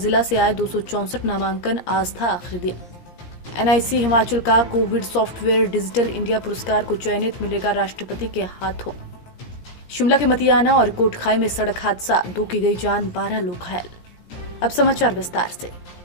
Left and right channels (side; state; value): right; late; 17 ms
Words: से आए 264 नामांकन, आज था आखिरी दिन। एनआईसी हिमाचल का कोविड सॉफ्टवेयर डिजिटल इंडिया पुरस्कार को चयनित मिलेगा राष्ट्रपति के हाथों। शिमला के मतियाना और कोटखाई में सड़क हादसा, 2 की गई जान, 12 लोग घायल। अब समाचार विस्तार से।